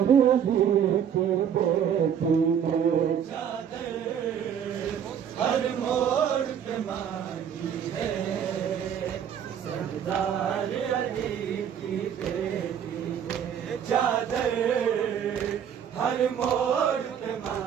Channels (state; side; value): quieter; left; 8.5 dB